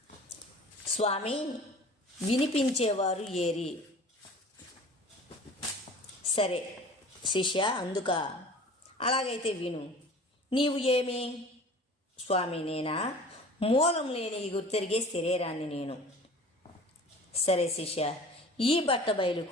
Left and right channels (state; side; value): normal; both; correlation 0.43